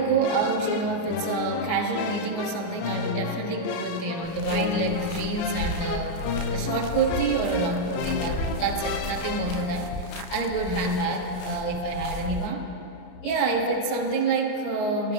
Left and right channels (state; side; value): late; right; 33 ms